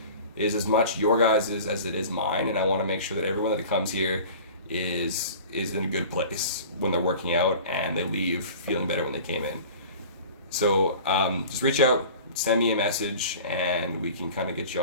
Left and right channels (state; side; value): inverted; both; correlation -0.41